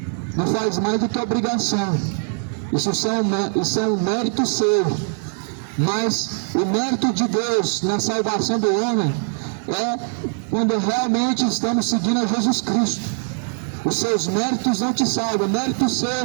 Não faz mais do que obrigação. Isso é um mérito seu. Mas o mérito de Deus na salvação do homem é quando realmente estamos seguindo a Jesus Cristo. Os seus méritos não te salvam. Mérito seu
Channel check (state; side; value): silent; left; 56 dB below the other